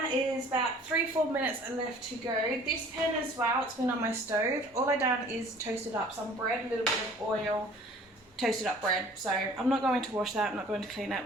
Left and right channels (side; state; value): both; normal; correlation 0.51